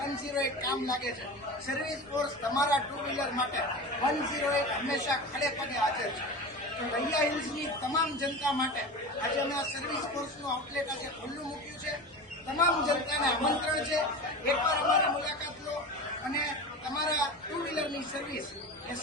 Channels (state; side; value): normal; both; correlation 0.29